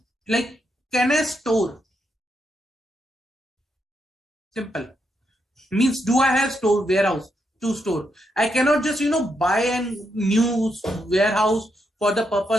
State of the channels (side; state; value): both; normal; correlation 0.81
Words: like, can I store? Simple. Means, do I have warehouse to store? I cannot just buy a new warehouse for the